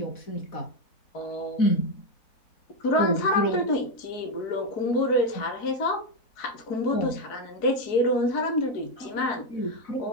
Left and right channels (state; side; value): late; right; 4.6 ms